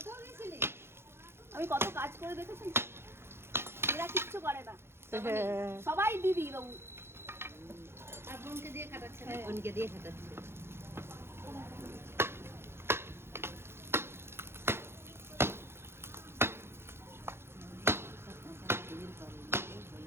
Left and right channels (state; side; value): late; left; 0.12 ms